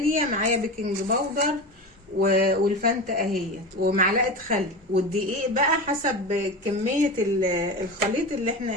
معايا بيكنج باودر والفانتا اهي، ومعلقة خل، والدقيق بقى حسب كمية الخليط اللي احنا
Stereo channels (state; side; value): normal; both; correlation 0.26